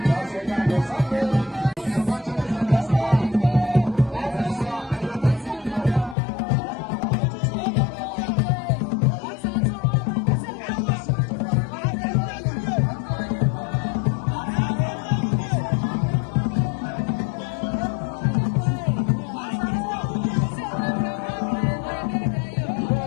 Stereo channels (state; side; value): drops out; right; at 6.2 s